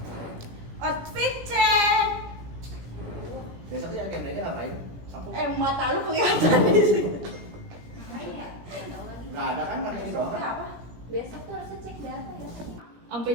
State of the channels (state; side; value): late; left; 17 ms